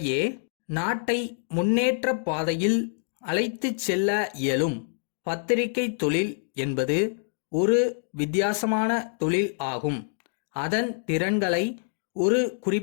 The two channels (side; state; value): right; silent; digital silence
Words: நாட்டை முன்னேற்ற பாதையில் அழைத்துச் செல்ல இயலும். பத்திரிகை தொழில் என்பது ஒரு வித்தியாசமான தொழில் ஆகும். அதன் திறன்களை ஒரு